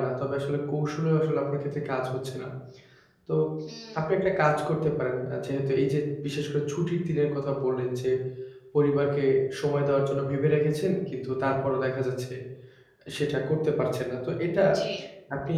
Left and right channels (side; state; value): both; identical; correlation 1.00